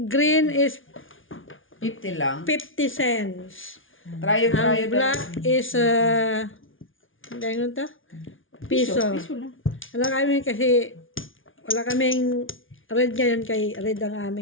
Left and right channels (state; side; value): late; right; 0.57 ms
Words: green is 50 lang. 50 cents. Trayo. Ang black is, hindi ano to? Piso. Piso lang. Wala kami kasi, wala kaming red ngayon kay red ang